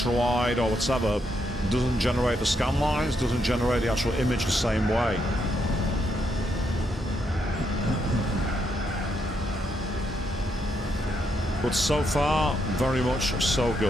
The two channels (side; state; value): both; normal; correlation 0.78